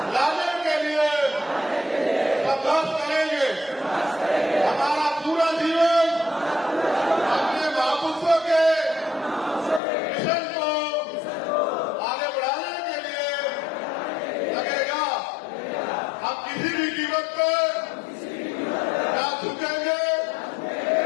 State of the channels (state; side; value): drops out; right; at 9.8 s